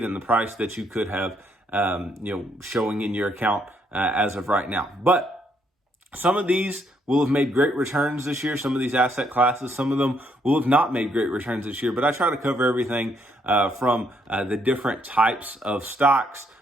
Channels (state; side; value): normal; both; correlation 0.72